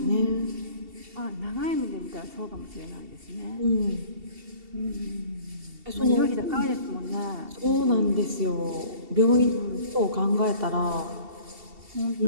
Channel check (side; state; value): left; late; 2.7 ms